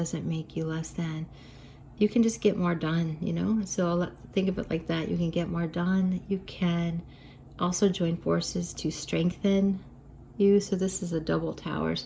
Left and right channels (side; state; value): both; identical; correlation 1.00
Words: make you less than. You can just get more done, you know? So think of it like that. You can get more done. You can also join forces to strengthen you. So this is a double tower.